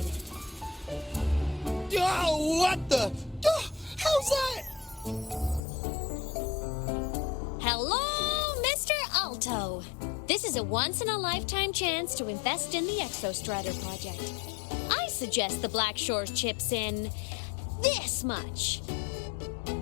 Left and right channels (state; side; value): drops out; right; at 5.6 s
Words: Oh, what the... how's that? Hello, Mr. Alto. This is a once-in-a-lifetime chance to invest in the Exostrider project. I suggest the Black Shores chips in this much.